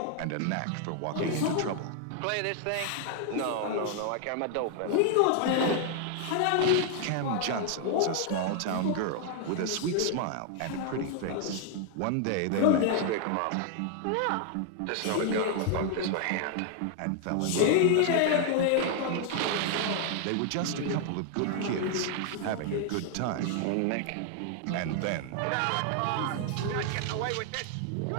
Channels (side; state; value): both; different; correlation 0.00